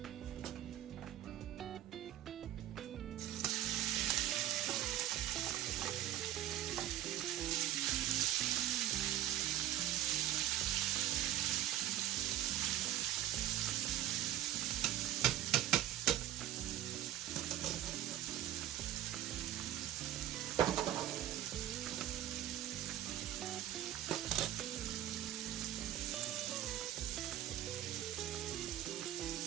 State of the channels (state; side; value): quieter; left; 12.7 dB